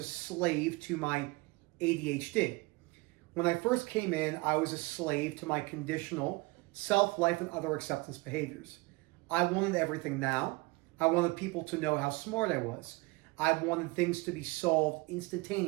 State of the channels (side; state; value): left; quieter; 24.1 dB